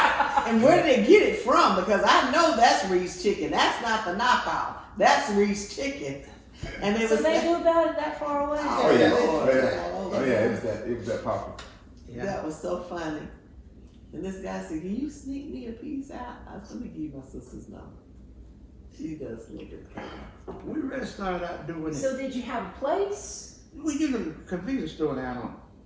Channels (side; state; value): both; identical; correlation 1.00